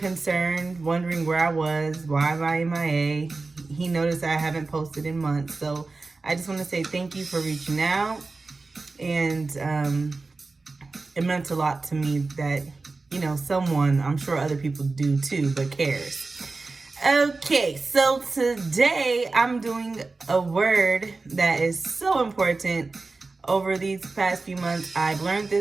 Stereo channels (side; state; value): left; quieter; 3.7 dB